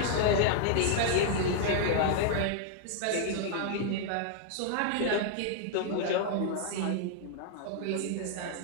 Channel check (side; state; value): both; different; correlation 0.00